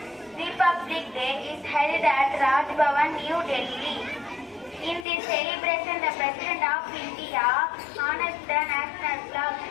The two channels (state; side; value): drops out; right; at 5.1 s